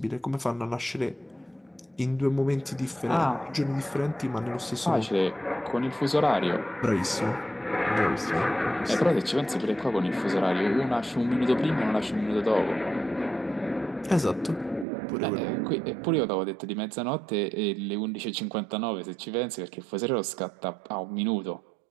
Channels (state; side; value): drops out; left; at 14.9 s